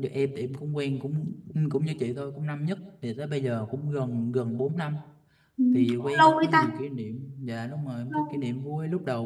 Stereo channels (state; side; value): identical; both; correlation 1.00